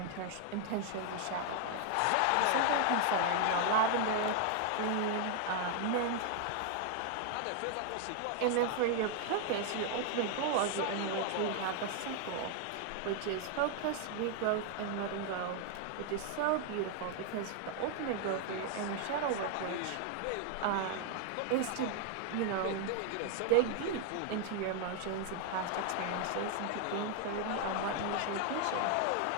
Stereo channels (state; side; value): different; both; correlation 0.00